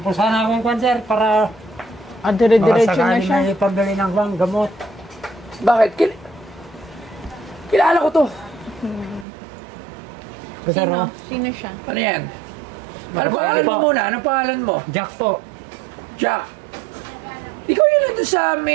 po sana akong kwan, sir, para Dire-diretso na siya. may pambili ng gamot. Bakit? Kilala ko to. Sino? Sino siya? Ano yan? Ano pangalan mo muna? Anong pangalan mo? Jack po. Jack. Ikaw yun nandun sa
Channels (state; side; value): drops out; left; at 9.2 s